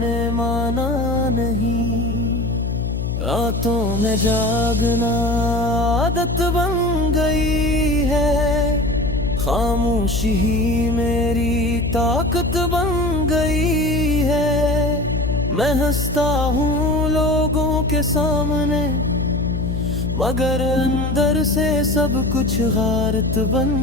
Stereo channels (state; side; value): noise; left; hum, 2 dB below the sound